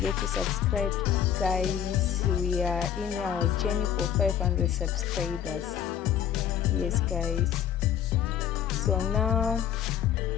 to subscribe, guys. We are in our journey for 500 subscribers. Yes guys, so now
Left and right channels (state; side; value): quieter; right; 9.4 dB